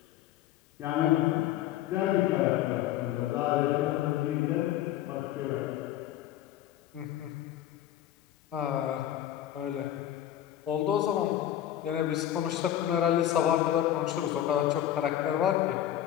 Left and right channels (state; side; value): quieter; right; 12.2 dB